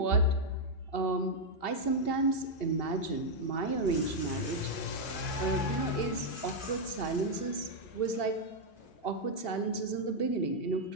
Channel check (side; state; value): right; late; 2.7 ms